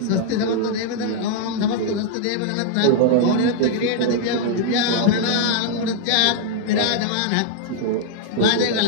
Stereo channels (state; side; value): different; both; correlation -0.01